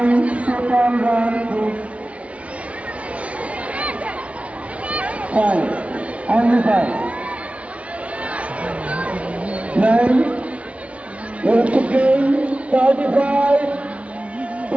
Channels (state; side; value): late; left; 0.064 ms